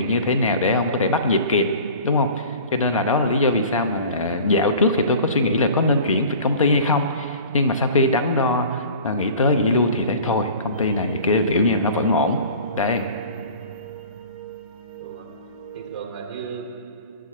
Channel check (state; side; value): inverted; both; correlation -0.42